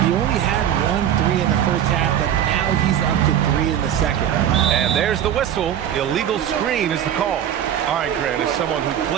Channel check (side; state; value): left; quieter; 10.2 dB